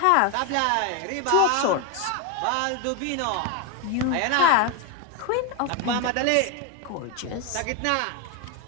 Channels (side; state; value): both; different; correlation 0.01